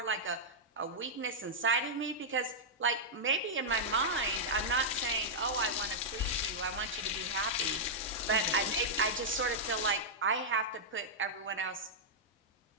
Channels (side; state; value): both; normal; correlation -0.08